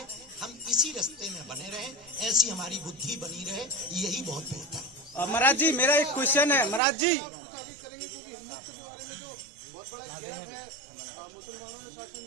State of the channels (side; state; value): left; drops out; at 6.8 s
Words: हम इसी रास्ते में बने रहे, ऐसी हमारी बुद्धि बनी रहे, यही बहुत बेहतर है। महाराज जी मेरा एक क्वेश्चन है महाराज जी,